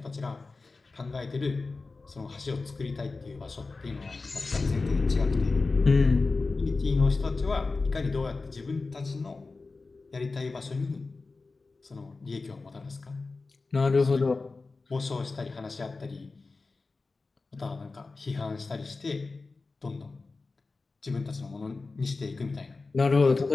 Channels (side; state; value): right; quieter; 3.8 dB